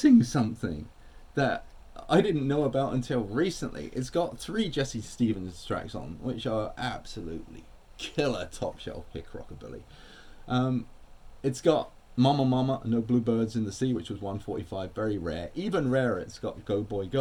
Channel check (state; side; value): identical; both; correlation 1.00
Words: something that I didn't know about until recently. It's got 3 Jesse Stevens tracks on, which are absolutely killer top shelf pick rockabilly. It's got Mama Mama, No Bluebirds in the Sea, which was 145, very rare. Even rarer, it's got Go Boy